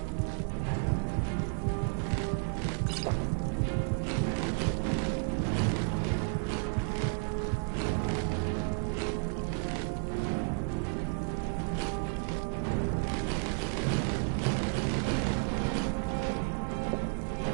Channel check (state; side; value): silent; left; 55 dB below the other